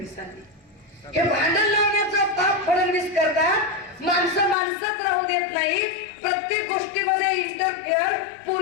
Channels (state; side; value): drops out; right; at 4.5 s